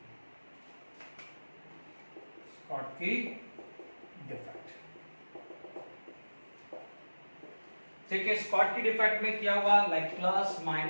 Schottky defect. ठीक है, स्कॉटकी डिफेक्ट में क्या हुआ, like plus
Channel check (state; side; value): inverted; both; correlation -1.00